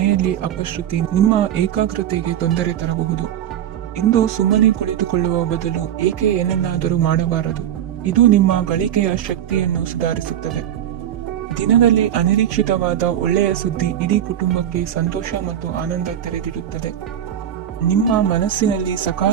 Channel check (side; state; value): left; quieter; 10.6 dB